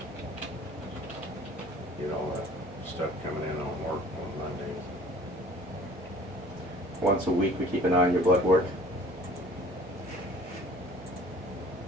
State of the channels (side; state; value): both; normal; correlation 0.49